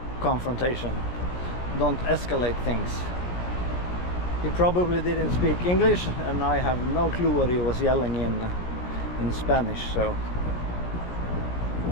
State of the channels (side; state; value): right; late; 17 ms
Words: confrontation. Don't escalate things. He probably didn't speak English, and I have no clue what he was yelling in Spanish, so...